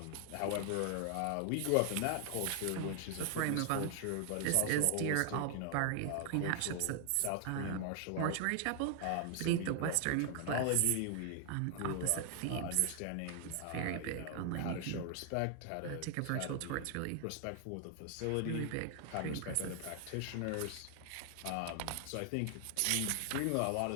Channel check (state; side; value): different; both; correlation 0.00